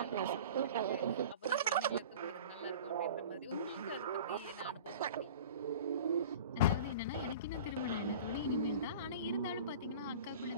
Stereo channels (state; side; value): inverted; both; correlation -0.39